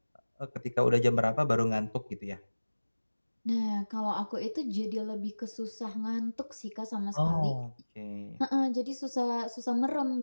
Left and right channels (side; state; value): both; inverted; correlation -1.00